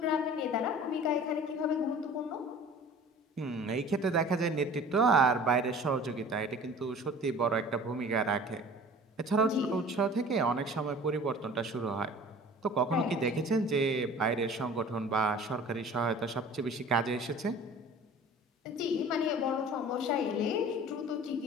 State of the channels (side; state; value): both; normal; correlation 0.44